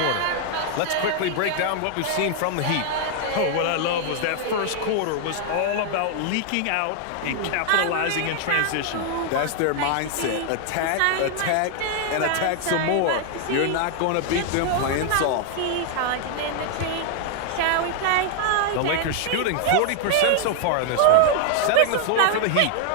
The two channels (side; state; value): both; different; correlation 0.00